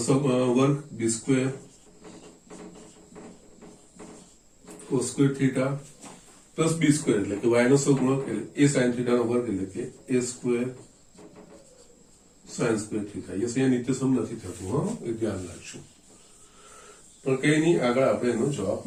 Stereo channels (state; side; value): identical; both; correlation 1.00